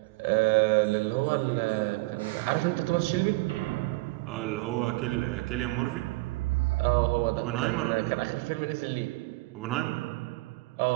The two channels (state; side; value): quieter; left; 22.7 dB